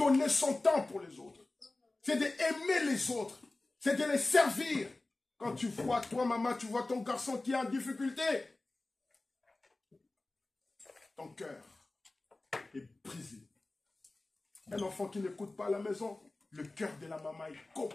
son temps pour les autres. C'est d'aimer les autres. C'est de les servir. Quand tu vois, toi maman, tu vois ton garçon qui est en difficulté, ton cœur est brisé. Un enfant qui n'écoute pas à la maison, le cœur de la maman est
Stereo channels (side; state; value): right; quieter; 3.0 dB